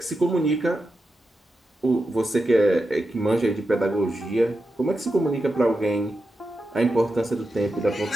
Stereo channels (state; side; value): normal; both; correlation 0.89